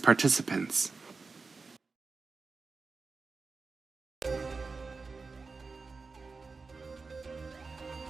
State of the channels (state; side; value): quieter; left; 4.3 dB